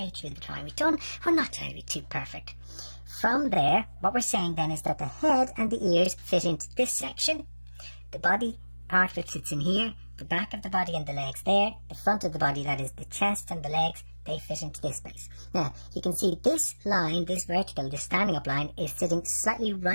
through the drawing. We're not trying to be too perfect. From there, what we're saying then is that the head and the ears fit into this section, the body part of it fits in here, the back of the body and the legs there, the front of the body, that is the chest and the legs, they fit into this space. Now, you can see this line, this vertical, this standing up line, is sitting slightly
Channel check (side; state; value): both; inverted; correlation -1.00